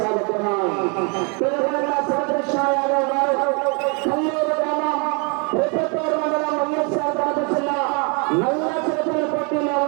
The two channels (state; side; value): quieter; left; 35.1 dB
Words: తెలంగాణ శ్రీకృష్ణ యాదవ్ గారు కల్లూరు గ్రామం ప్రతిపూర్ మండలం వైఎస్ఆర్ కడప జిల్లా నల్ల చేతుల పోటీలో